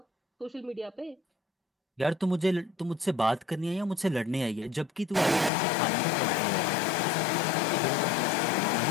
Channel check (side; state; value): right; drops out; at 5.5 s